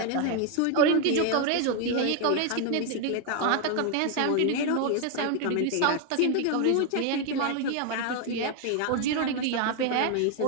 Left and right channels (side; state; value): both; different; correlation 0.01